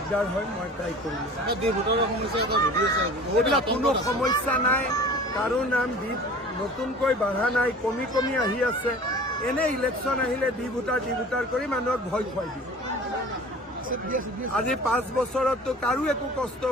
হয়, মই ট্ৰাই কৰিম। এইবিলাক কোনো সমস্যা নাই, কাৰো নাম দ্বীপ নতুনকৈ বাঢ়া নাই, কমি কমি আহি আছে। এনে ইলেকশ্যন আহিলে ডি ভোটাৰ কৰি মানুহক ভয় খুৱাই দিয়ে। আজি 5 বছৰততো কাৰো একো কষ্ট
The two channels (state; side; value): normal; both; correlation 0.43